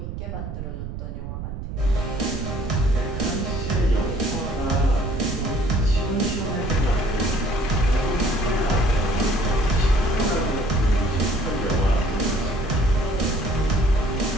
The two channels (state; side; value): noise; right; rumble, 6 dB below the sound